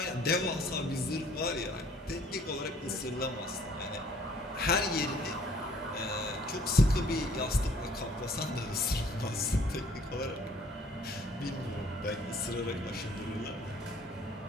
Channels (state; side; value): normal; both; correlation 0.58